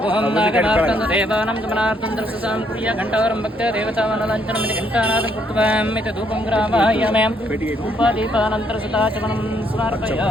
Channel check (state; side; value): normal; both; correlation 0.70